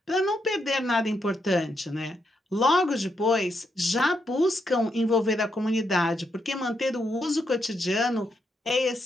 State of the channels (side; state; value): both; normal; correlation 0.80